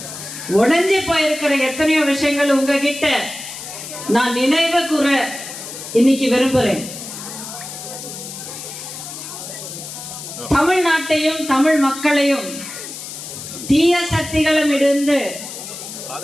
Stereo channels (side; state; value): left; noise; hiss, 10 dB below the sound